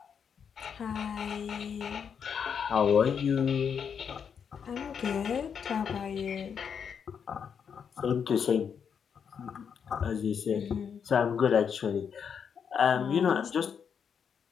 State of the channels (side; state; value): right; quieter; 7.1 dB